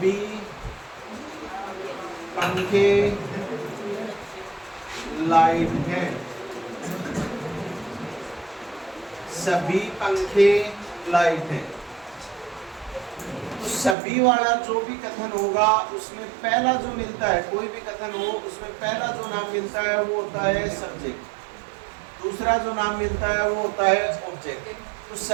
पंखे लाइट हैं, सभी पंखे लाइट हैं। तो सभी वाला जो भी कथन होगा उसमें पहला जो मिलता है, कोई भी कथन हो उसमें पहला जो नाम मिलता है वो होता है सब्जेक्ट, दूसरा जो नाम मिलता है वो होता है ऑब्जेक्ट। तो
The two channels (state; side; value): drops out; left; at 14.0 s